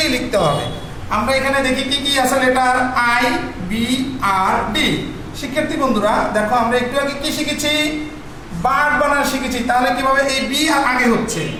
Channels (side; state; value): both; identical; correlation 1.00